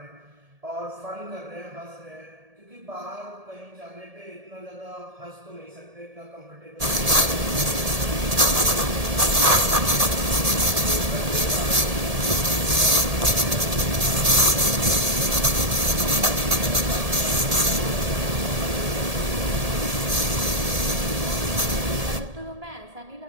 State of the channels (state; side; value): late; left; 1.7 ms